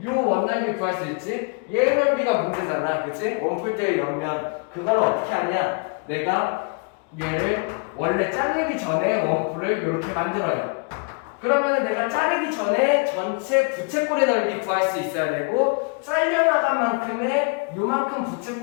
요 원넓이 구할 수 있지? 얘 넓이가 문제잖아. 그치? 원뿔대의 옆면 그걸 어떻게 하냐? 내가 얘를 원래 자르기 전에 원뿔을 이렇게 만들어요. 그러면은 내가 자르기 전에 전체 부채꼴의 넓이 구할 수 있어야 되고 잘려나간 만큼의 요만큼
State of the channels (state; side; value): quieter; right; 34.2 dB